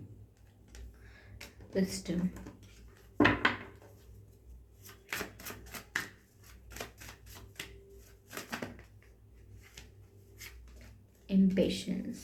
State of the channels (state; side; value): identical; both; correlation 1.00